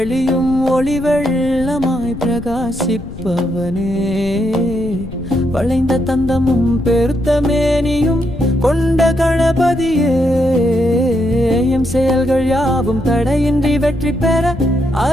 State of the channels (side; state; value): left; noise; rumble, 13 dB below the sound